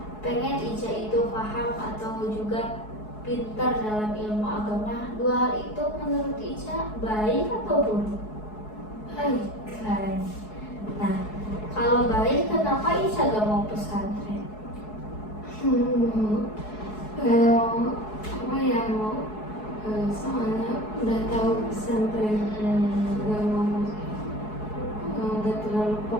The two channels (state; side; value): late; right; 4.7 ms